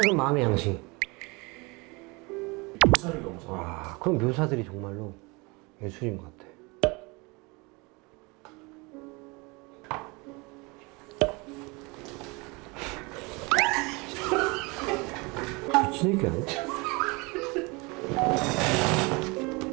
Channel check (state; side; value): quieter; left; 26.9 dB